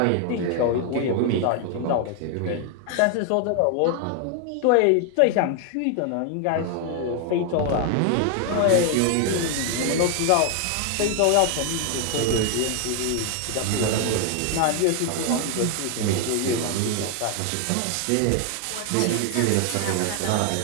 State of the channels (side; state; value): both; different; correlation 0.00